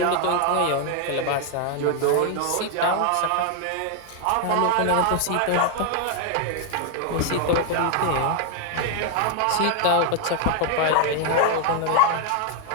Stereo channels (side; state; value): both; different; correlation 0.01